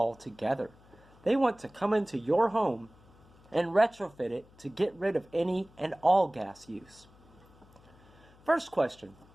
They want to come into your home and retrofit it to get rid of any and all gas use. First question,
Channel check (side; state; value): left; noise; hum, 26 dB below the sound